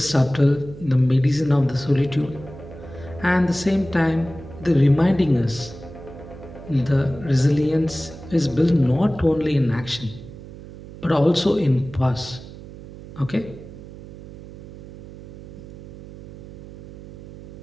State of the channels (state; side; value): noise; right; hum, 15 dB below the sound